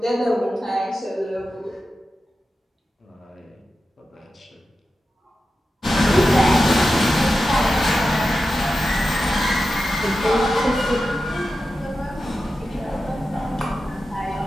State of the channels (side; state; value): both; normal; correlation 0.91